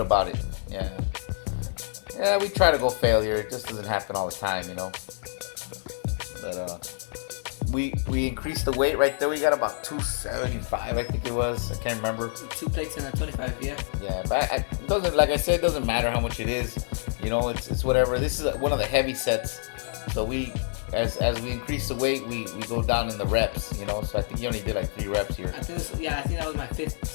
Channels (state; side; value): silent; right; digital silence